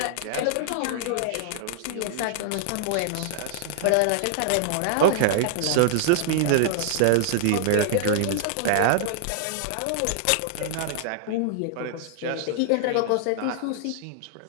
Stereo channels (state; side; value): different; both; correlation -0.01